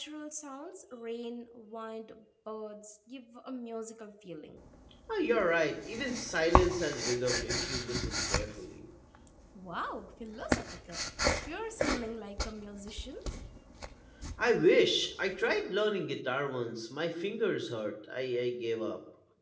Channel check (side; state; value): both; identical; correlation 1.00